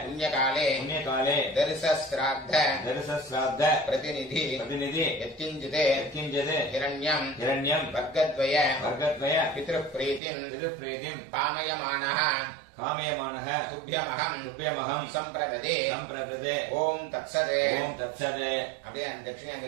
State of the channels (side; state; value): left; drops out; at 10.2 s